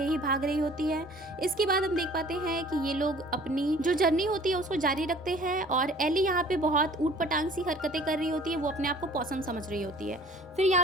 ही भाग रही होती है। इसके बाद हम देख पाते हैं कि ये लोग अपनी जो जर्नी होती है उसको जारी रखते हैं और एली यहाँ पे बहुत ऊट पटांग सी हरकतें कर रही होती है, वो अपने आप को पॉसम समझ रही होती है। फिर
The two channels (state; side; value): normal; both; correlation 0.51